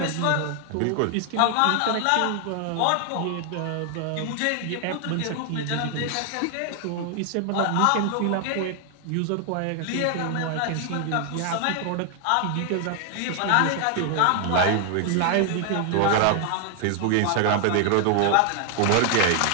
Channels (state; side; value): different; both; correlation 0.00